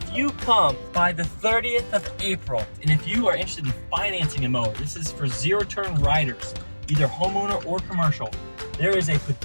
you come by the 30th of April, and if you are interested in financing a mower, this is for zero-turn riders, either homeowner or commercial. There is a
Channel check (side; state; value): both; inverted; correlation -1.00